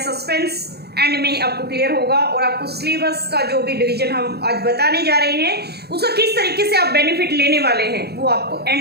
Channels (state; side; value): late; left; 0.47 ms